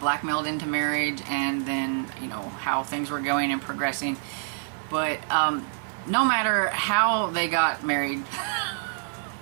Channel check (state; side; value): silent; left; digital silence